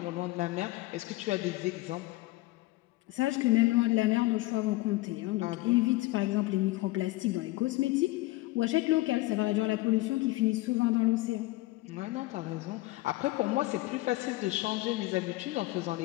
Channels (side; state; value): right; quieter; 19.8 dB